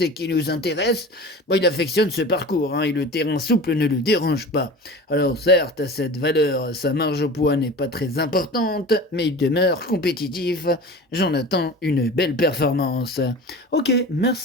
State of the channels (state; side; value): normal; both; correlation 0.36